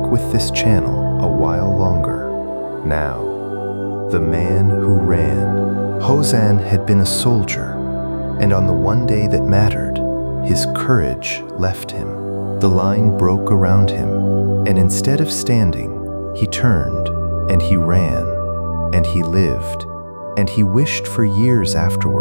with this channel a while longer. Now, the man who ran. Hozan had been a soldier, and on the one day that mattered, his courage left him. The line broke around him, and instead of standing, he turned, and he ran, and he lived. And he wished for years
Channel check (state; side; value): inverted; both; correlation -1.00